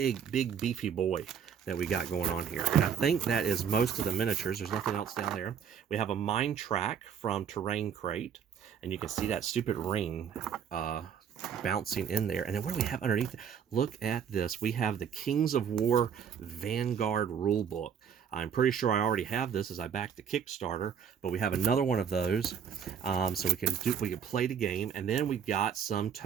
beefy boy that we got going on here. And I think that is most of the miniatures. There's nothing else down there. We have a mine track from Terrain Crate, and you can see that stupid ring bouncing in there. And then what do we have underneath? Look at this. We have the Kings of War Vanguard rulebook. I'm pretty sure I already have this as I backed the Kickstarter, but we have another one of those, so we can play the game. And then we got some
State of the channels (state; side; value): quieter; left; 7.8 dB